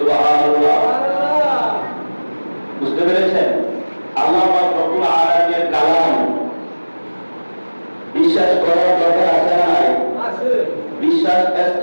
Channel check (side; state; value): both; inverted; correlation -1.00